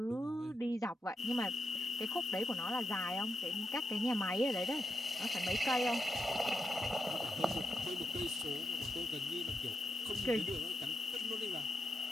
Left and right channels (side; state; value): both; normal; correlation 0.84